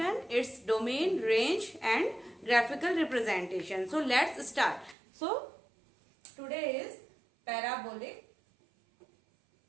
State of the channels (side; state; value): left; drops out; at 5.0 s